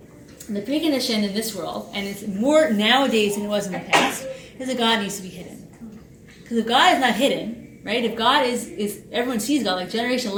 And the precondition in this world, and it's more nowadays than it was in the past, is that God needs to be hidden. Because if God is not hidden, right? If God is everyone sees God, like generation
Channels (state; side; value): identical; both; correlation 1.00